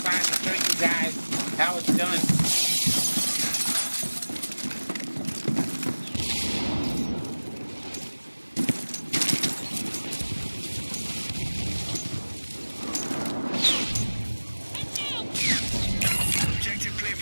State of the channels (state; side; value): inverted; both; correlation -1.00